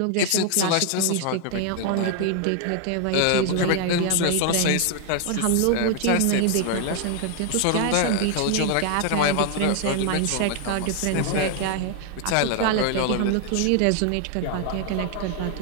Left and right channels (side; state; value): both; different; correlation 0.00